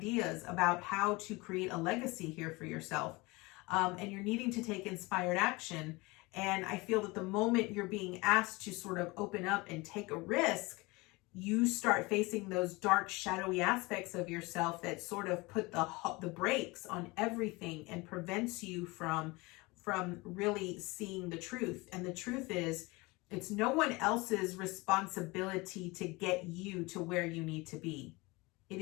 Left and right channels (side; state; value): right; quieter; 23.9 dB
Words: about how to create a legacy here for yourself. and you're needing to take inspired action. And I feel that the moment you're being asked to sort of open up and take a risk, you start facing those dark, shadowy aspects of yourself that sort of put the brakes on everything and prevents you from really seeing the truth. And the truth is, it's no one else's responsibility to get you to where you need to be. It